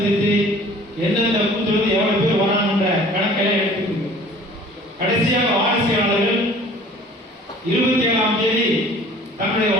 எந்தெந்த பூத்திலிருந்து எவ்வளவு பேர் வராங்க என்ற கணக்கெல்லாம் எடுத்துக்கொண்டு கடைசியாக வாரிசுயாளர்கள் 27ஆம் தேதி தங்களுடைய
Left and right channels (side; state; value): both; normal; correlation 0.49